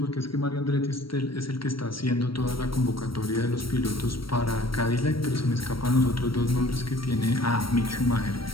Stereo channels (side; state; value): right; late; 0.75 ms